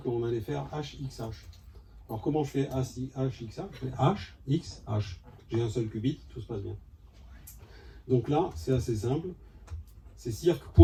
allait faire HXH. Alors comment je fais HXH? Je fais H, X, H. J'ai un seul qubit, tout se passe bien. Donc là, c'est assez simple. C'est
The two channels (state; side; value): identical; both; correlation 1.00